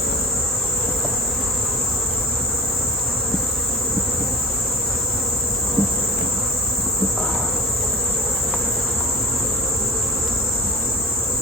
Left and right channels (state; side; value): normal; both; correlation 0.34